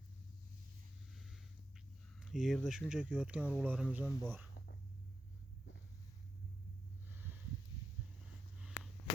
Yerda shunchaki yotgan urug'larimiz ham bor.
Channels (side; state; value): both; normal; correlation 0.87